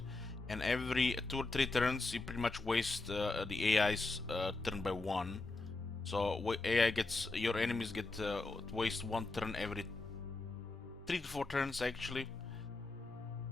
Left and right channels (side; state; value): right; quieter; 3.2 dB